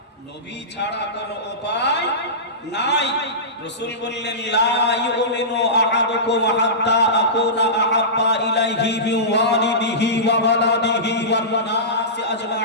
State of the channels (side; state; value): both; normal; correlation -0.20